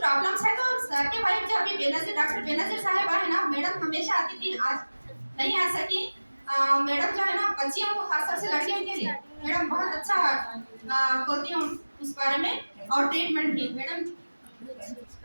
है तो सर के वाइफ जो अभी बेनजीर डॉक्टर बेनजीर साहिबा है ना, मैडम हमेशा आती थी, आज नहीं आ सकी. मैडम जो है ना बच्चियों को खासतौर से लड़कियों के लिए मैडम बहुत अच्छा बोलती हूँ उस बारे में, और ट्रीटमेंट भी मैडम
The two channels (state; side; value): inverted; both; correlation -1.00